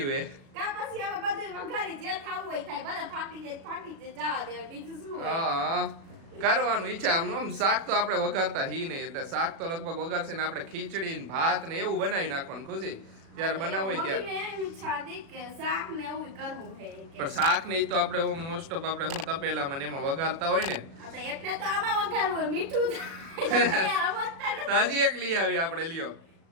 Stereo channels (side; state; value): left; late; 36 ms